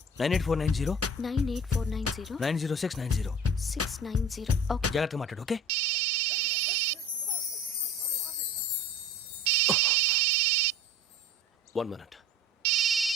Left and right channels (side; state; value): both; normal; correlation 0.42